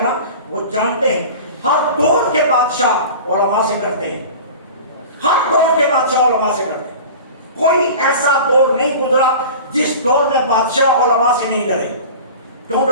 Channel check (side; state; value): both; inverted; correlation -0.37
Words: نا وہ جانتے ہیں ہر دور کے بادشاہ علماء سے کرتے ہیں. ہر دور کے بادشاہ علماء سے ڈرتے ہیں، کوئی ایسا دور نہیں گزرا جس دور میں بادشاہ علماء سے نہیں ڈرے۔ کیوں